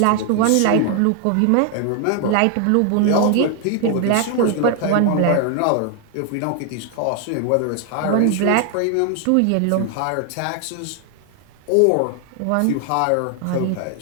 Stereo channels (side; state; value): both; different; correlation 0.00